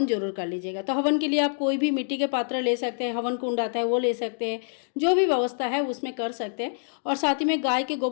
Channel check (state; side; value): silent; right; digital silence